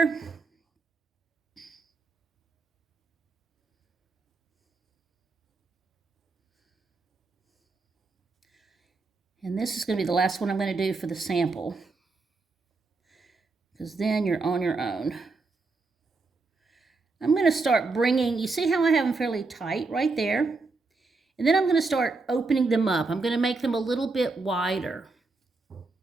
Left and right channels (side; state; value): left; quieter; 3.8 dB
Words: And this is going to be the last one I'm going to do for the sample, because then you're on your own. I'm going to start bringing, you see how I have them fairly tight right there? And then I'm going to start opening them up. I'm going to make them a little bit wider.